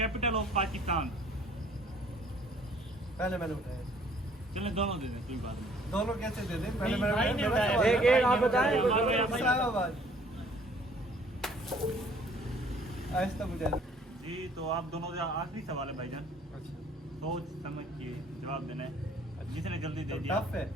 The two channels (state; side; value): normal; both; correlation 0.58